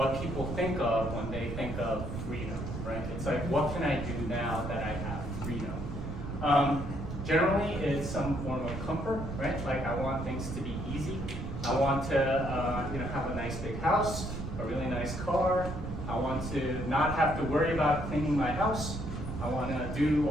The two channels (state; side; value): noise; right; rumble, 6 dB below the sound